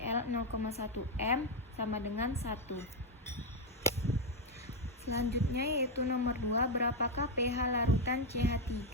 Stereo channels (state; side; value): normal; both; correlation 0.04